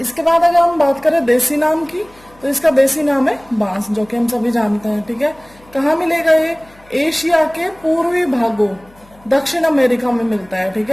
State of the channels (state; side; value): noise; left; hum, 27 dB below the sound